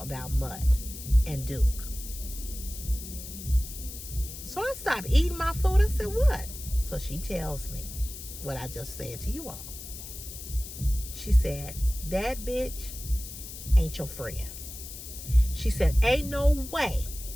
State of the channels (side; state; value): left; noise; hiss, 11 dB below the sound